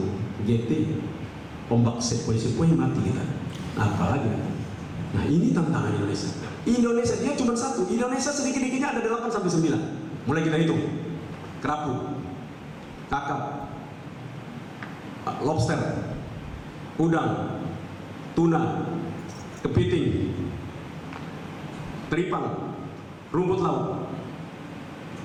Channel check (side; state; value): both; identical; correlation 1.00